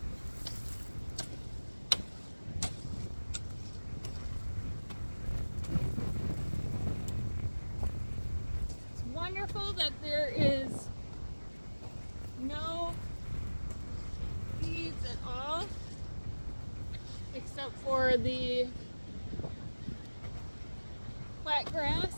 It's wonderful that there is no weeds at all, except for the quackgrass.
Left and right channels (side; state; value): both; inverted; correlation -1.00